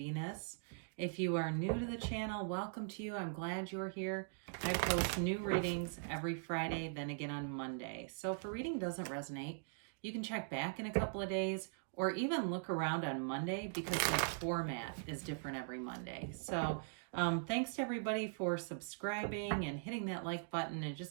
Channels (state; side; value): silent; left; digital silence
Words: If you are new to the channel, welcome to you. I'm glad you're here. I post new readings every Friday, then again on Monday. So if a reading doesn't resonate, you can check back in a couple of days or even look around on Monday because the format is different every Monday. So thanks to everybody for subscribing and hitting that like button and